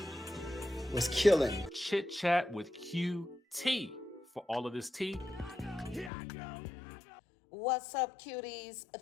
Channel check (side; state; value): right; drops out; at 6.1 s